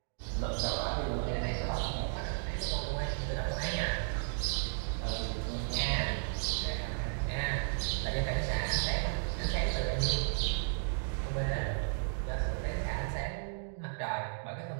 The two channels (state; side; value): silent; left; digital silence